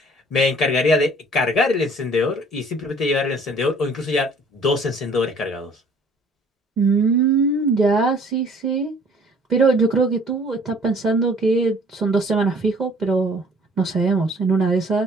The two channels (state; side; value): normal; both; correlation 0.55